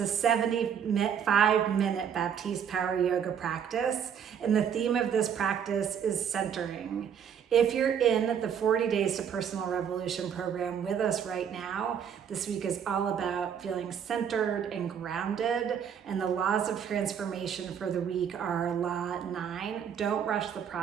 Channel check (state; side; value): quieter; left; 8.0 dB